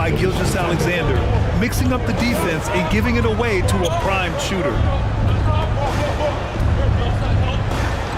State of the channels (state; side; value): identical; both; correlation 1.00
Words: Gilgeous-Alexander, mixing up the defense and giving it away to a prime shooter.